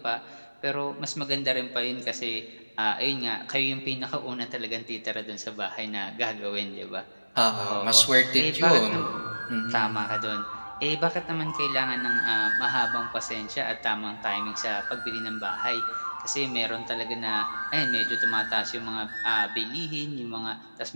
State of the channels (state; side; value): inverted; both; correlation -1.00